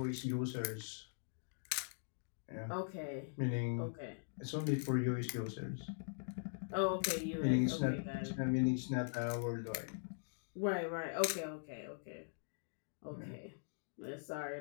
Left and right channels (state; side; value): silent; right; digital silence